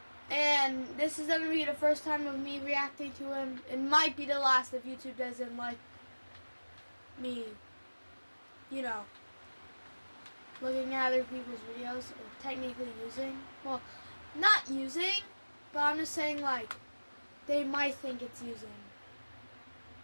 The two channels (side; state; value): both; inverted; correlation -1.00